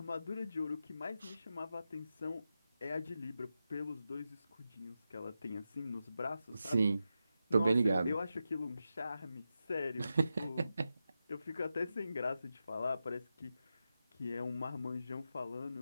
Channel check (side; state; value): both; inverted; correlation -0.89